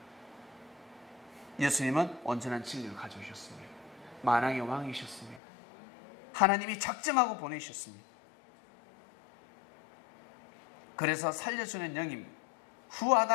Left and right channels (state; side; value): drops out; right; at 5.4 s